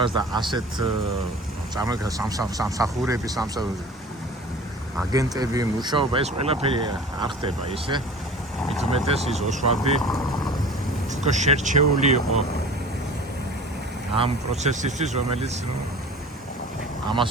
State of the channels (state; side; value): normal; both; correlation 0.41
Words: და ასეთ სამსახურების აგენტები მუშაობა ეს ყველაფერი არ ხდება ისე. მით უმეტეს ის ოსვალდი უფრო შერჩეული იყო ამ პროცესისთვის, რომელიც ამას